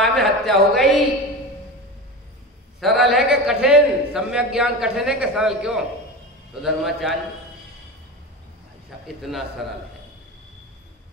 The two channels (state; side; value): normal; both; correlation 0.27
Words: में हत्या हो गई। सरल है कि कठिन? सम्यक ज्ञान कठिन है कि सरल? क्यों? तो धर्माचार्य इतना सरल है।